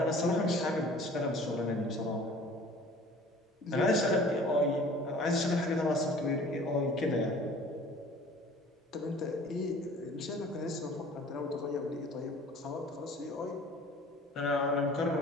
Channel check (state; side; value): normal; both; correlation 0.48